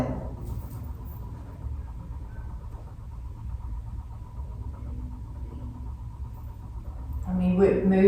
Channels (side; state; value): both; identical; correlation 1.00